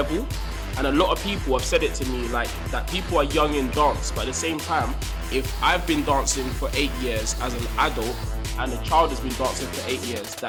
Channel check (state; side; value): identical; both; correlation 1.00